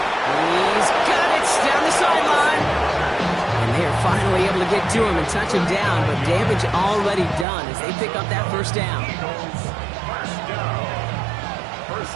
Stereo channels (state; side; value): drops out; left; at 7.5 s